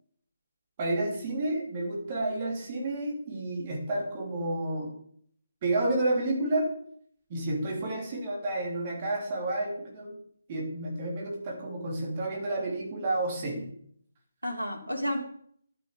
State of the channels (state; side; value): inverted; both; correlation -0.77